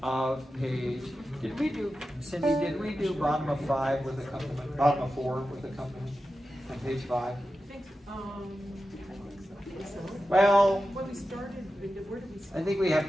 of page? Did we do, Cindy? Did we do bottom of 5 with accompaniment? Bottom of 4 with accompaniment on page 5? Well, when we started, where did we start? I think we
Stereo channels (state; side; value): normal; both; correlation 0.92